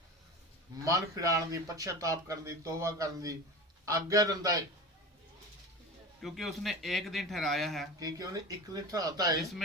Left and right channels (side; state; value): both; normal; correlation 0.29